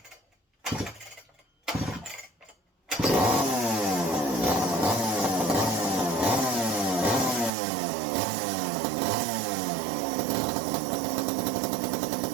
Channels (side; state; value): left; drops out; at 7.5 s